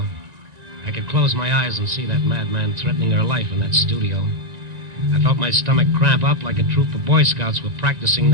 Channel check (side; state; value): left; late; 1.9 ms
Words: I could close my eyes and see that madman threatening her life in that studio. I felt my stomach cramp up like a troop of Boy Scouts were practicing